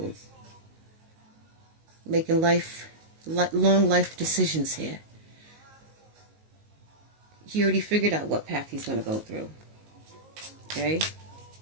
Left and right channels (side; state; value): left; late; 19 ms